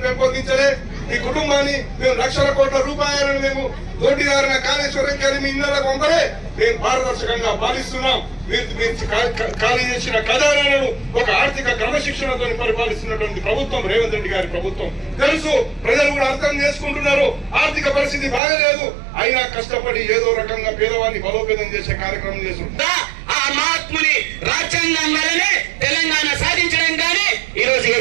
పెంపొందించలే, ఈ కుటుంబాన్ని మేము లక్షల కోట్ల రూపాయలను మేము దోటిదారిన కాళేశ్వరం గారి మీ ఇళ్లకు పంపలే, మేము పారదర్శకంగా పాలిస్తున్నాం. ఖాళీ చేసిన ఖజానాలను ఒక ఆర్థిక క్రమశిక్షణతో పరిపాలిస్తున్నటువంటి ప్రభుత్వం రేవంత్ రెడ్డి గారి ప్రభుత్వం. తెలుసు, ప్రజలు కూడా అర్థం చేసుకుంటున్నారు. ఆర్థిక పరిస్థితి బాగలేదు, అయినా కష్టపడి ఏదో రకంగా పేదవాడిని బలోపేతం చేసే కార్యక్రమం చేస్తున్నారు. ఆ మహాత్ముని రాజ్యాంగం వల్లనే తెలంగాణ సాధించడం. కానీ ఈ రోజు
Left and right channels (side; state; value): left; drops out; at 18.4 s